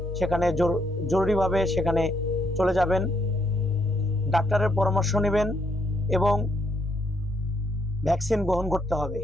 সেখানে জরুরিভাবে সেখানে চলে যাবেন, ডাক্তারের পরামর্শ নেবেন এবং ভ্যাকসিন গ্রহণ করতে হবে।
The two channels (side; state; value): both; normal; correlation 0.74